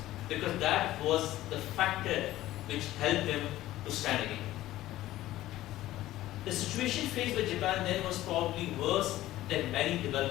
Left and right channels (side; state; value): right; quieter; 15.3 dB